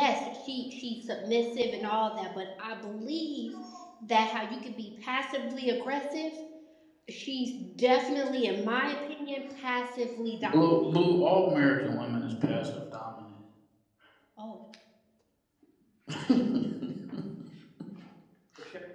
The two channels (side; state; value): both; identical; correlation 1.00